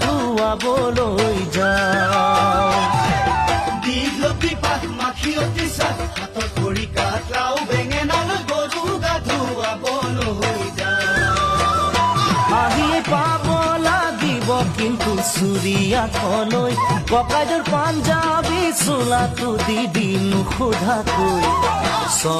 ধুৱাবলৈ যাওঁ দীঘলতিৰ পাত মাখিয়তিৰ চাট হাতৰ খৰি কাঠ লাও বেঙেনালৈ গৰু গা ধুৱাবলৈ যাওঁ আহিয়ে পাব লাগিব কিন্তু চুৰিয়াখলৈ ককাইদেউৰ পাঞ্জাবী চোলাটো দি দিনো সোধাকৈ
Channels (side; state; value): both; identical; correlation 1.00